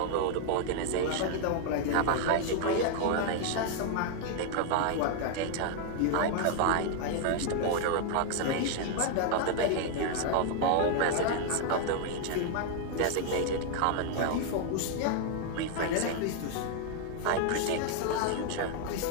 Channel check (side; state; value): both; different; correlation 0.00